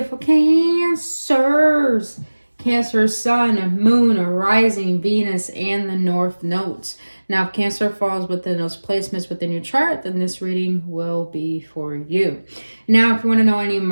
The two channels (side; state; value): both; inverted; correlation -1.00